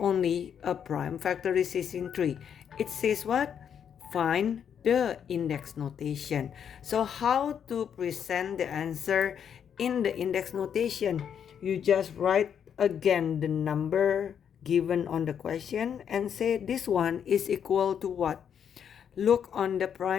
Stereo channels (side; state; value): right; quieter; 8.2 dB